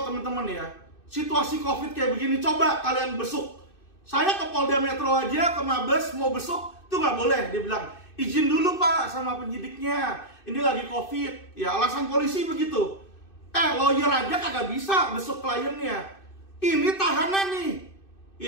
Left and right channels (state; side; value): late; right; 2.6 ms